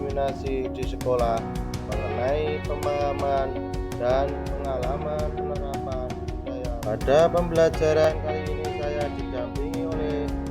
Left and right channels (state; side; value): identical; both; correlation 1.00